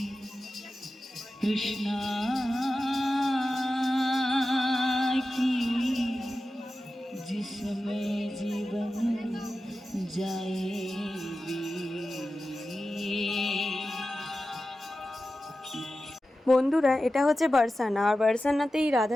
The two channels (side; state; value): both; normal; correlation 0.93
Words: कृष्णा की, जिसमें जीवन जाएगी। বন্ধুরা, এটা হচ্ছে বারসানা। আর বারসানাতেই